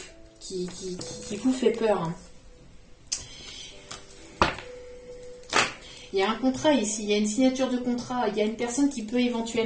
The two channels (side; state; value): both; identical; correlation 1.00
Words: fait peur. Hein. Il y a un contrat ici, il y a une signature de contrat, il y a une personne qui peut